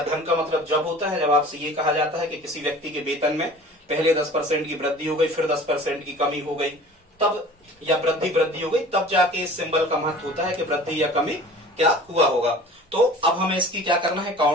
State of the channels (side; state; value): both; normal; correlation 0.43